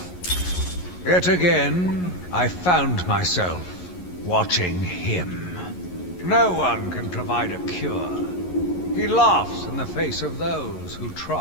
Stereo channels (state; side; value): late; right; 11 ms